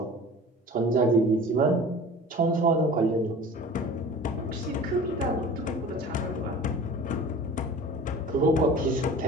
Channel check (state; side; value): normal; both; correlation 0.41